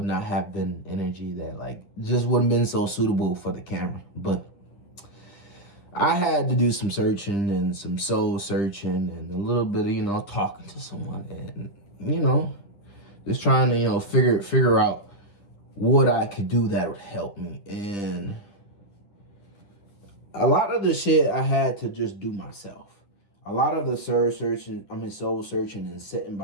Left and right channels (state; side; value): late; right; 10 ms